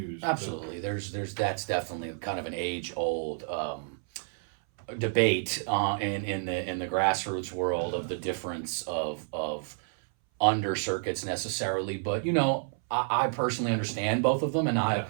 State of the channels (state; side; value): silent; left; 58 dB below the other